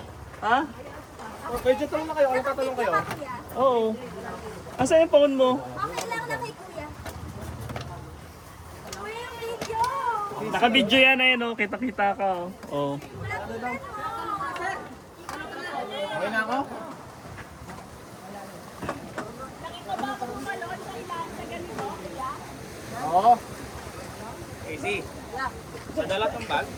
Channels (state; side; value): identical; both; correlation 1.00